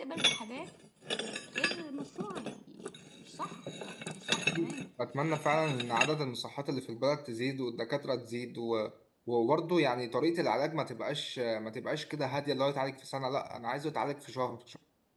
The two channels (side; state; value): both; identical; correlation 1.00